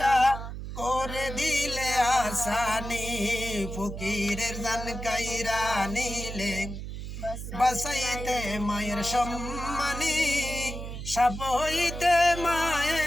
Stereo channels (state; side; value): noise; right; hum, 8 dB below the sound